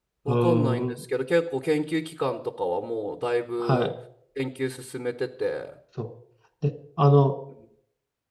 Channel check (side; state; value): both; identical; correlation 1.00